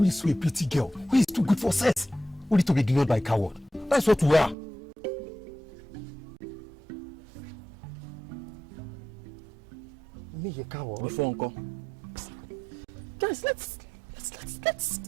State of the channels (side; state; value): left; drops out; at 4.5 s